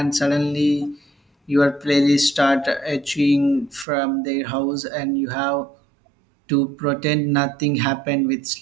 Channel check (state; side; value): drops out; left; at 3.9 s